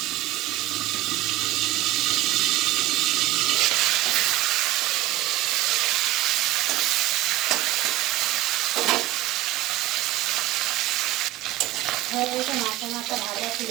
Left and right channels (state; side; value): quieter; left; 16.3 dB